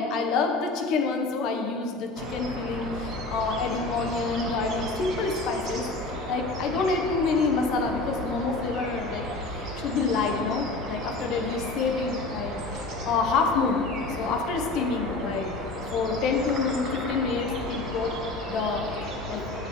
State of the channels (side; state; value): right; quieter; 3.3 dB